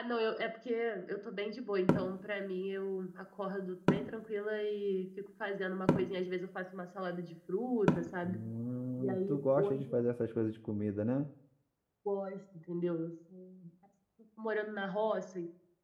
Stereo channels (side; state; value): both; identical; correlation 1.00